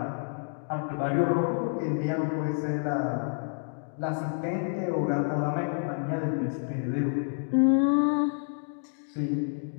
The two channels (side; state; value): right; silent; digital silence